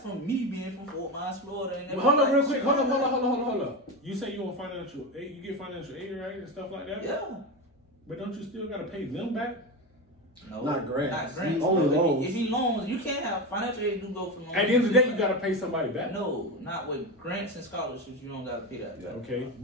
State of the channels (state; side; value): normal; both; correlation 0.18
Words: me being from Fort Myers, Florida. And Hold on, real quick. Hold on. You say you want financial aid. You get financial aid, right, and stuff like that. Yeah. But don't you still gotta pay them back? No, Not grants. Not grants. Only bro. loans. If you loans, you can't have financial aid. You go for loans. At the end of the day, you gotta pay somebody back. No, not with grants and scholarships. You don't gotta pay that. Okay,